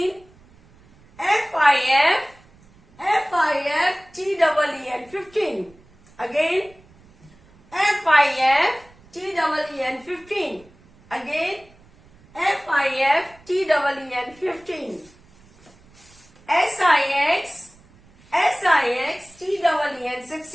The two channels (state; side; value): noise; right; rumble, 28 dB below the sound